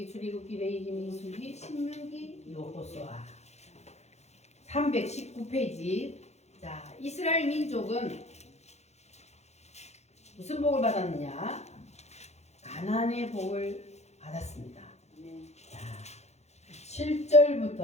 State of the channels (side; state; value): right; late; 0.32 ms